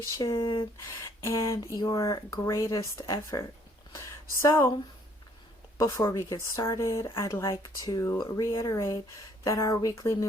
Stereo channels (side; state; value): both; normal; correlation 0.63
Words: and your greatest effort. So, before we get started, I'd like to reiterate that our weekly